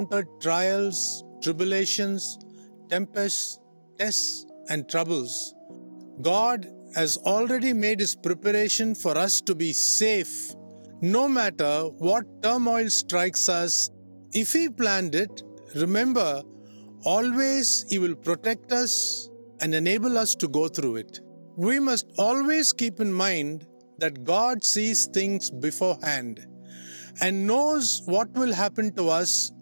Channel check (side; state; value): both; inverted; correlation -1.00